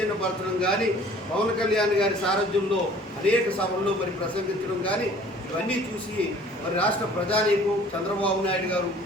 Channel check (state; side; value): normal; both; correlation 0.51